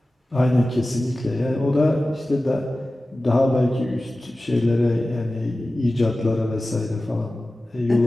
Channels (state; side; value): normal; both; correlation 0.96